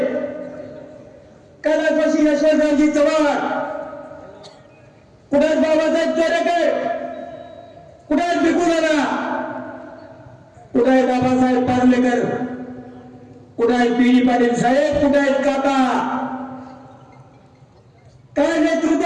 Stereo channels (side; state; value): both; identical; correlation 1.00